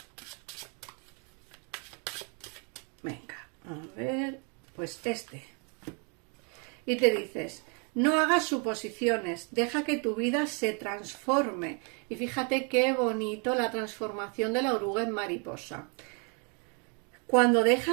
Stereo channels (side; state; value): left; quieter; 36.4 dB